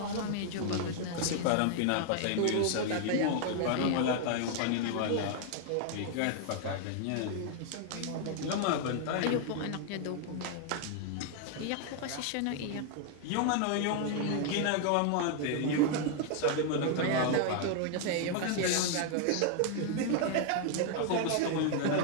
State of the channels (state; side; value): different; both; correlation 0.00